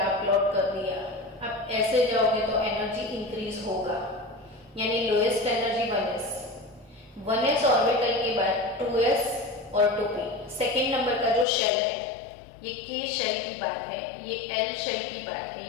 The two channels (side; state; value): right; drops out; at 11.5 s